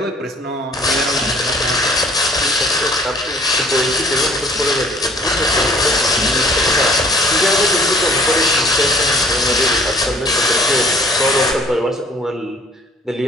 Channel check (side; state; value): both; normal; correlation 0.55